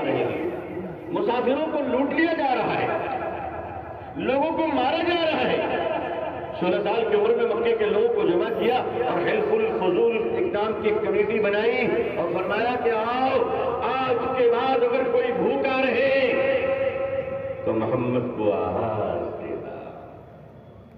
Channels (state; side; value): identical; both; correlation 1.00